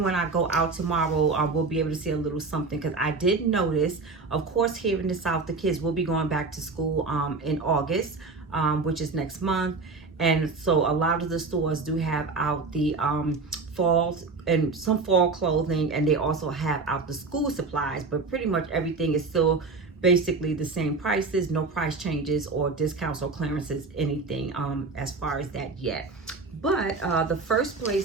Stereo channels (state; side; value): quieter; left; 4.1 dB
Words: when I go out tomorrow, we'll be able to see a little something, because I did notice, of course, here in the South, the kids will be going back to school in August, which is next month. And so a lot of the stores do have out the fall and some fall clothing, and they also have out the school supplies, but pretty much everything is still basically the same prices, no price changes or discounts or clearances, anything as far as that yet. But the first